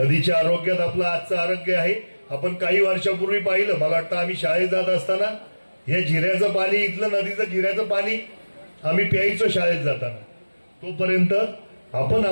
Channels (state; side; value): inverted; both; correlation -1.00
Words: आरोग्यात आपलं आजचं आरोग्य आहे। आपण काही वर्षापूर्वी पाहिलं, मला वाटतं आम्ही शाळेत जात असताना हे जिऱ्याचं पाणी, इथलं नदीचं जिऱ्याचं पाणी आम्ही प्यायचो शाळेत जाताना, तोपर्यंत आपण